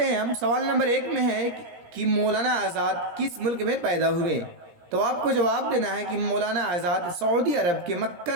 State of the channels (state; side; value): late; left; 17 ms